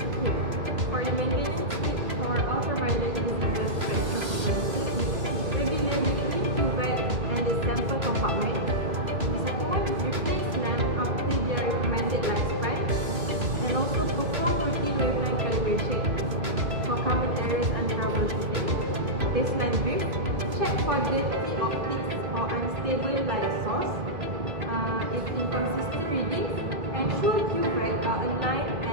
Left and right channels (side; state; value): left; late; 3.0 ms